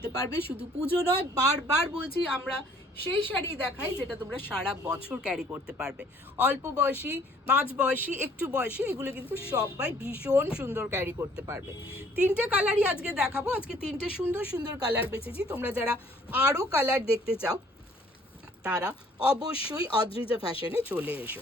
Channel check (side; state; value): both; normal; correlation 0.58